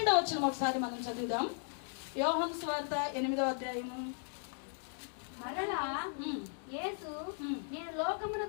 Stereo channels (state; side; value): silent; right; 53 dB below the other